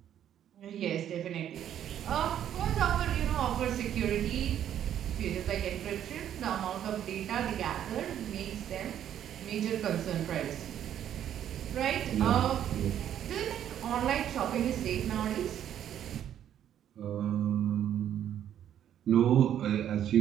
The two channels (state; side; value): quieter; left; 10.4 dB